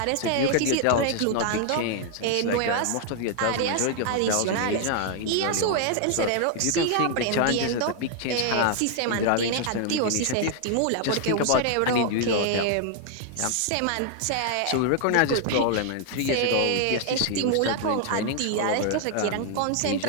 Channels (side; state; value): both; different; correlation 0.00